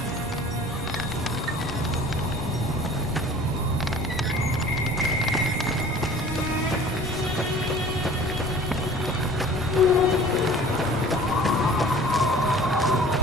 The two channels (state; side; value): normal; both; correlation 0.45